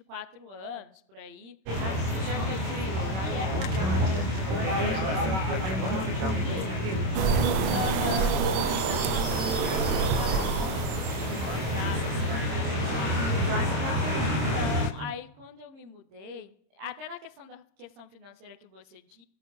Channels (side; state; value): left; late; 26 ms